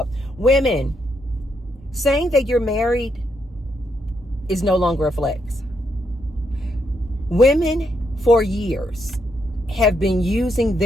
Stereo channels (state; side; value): normal; both; correlation 0.78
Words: women saying that you're married is no longer a flex. Women for years have been using